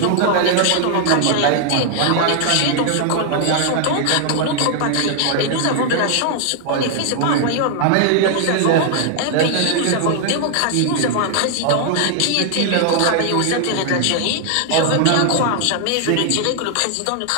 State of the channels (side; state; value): both; different; correlation 0.00